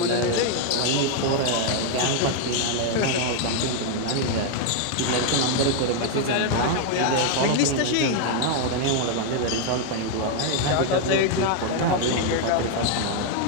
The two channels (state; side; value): different; both; correlation 0.00